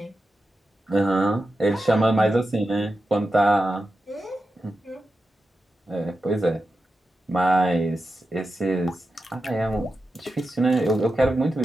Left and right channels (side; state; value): both; normal; correlation 0.90